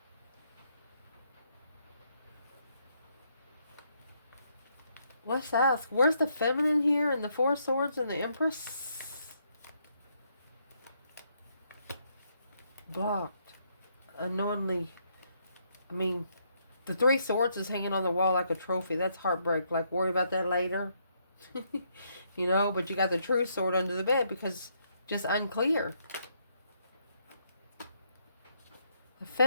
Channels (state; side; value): inverted; both; correlation -0.74